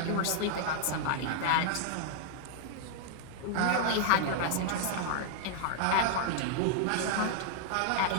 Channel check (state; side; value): different; both; correlation -0.01